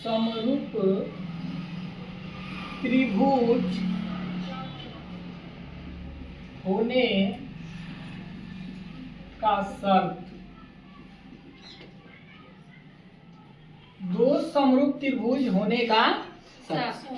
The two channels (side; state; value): both; identical; correlation 1.00